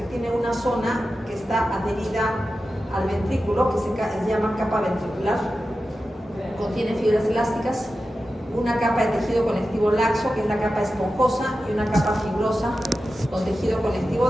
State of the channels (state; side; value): normal; both; correlation 0.92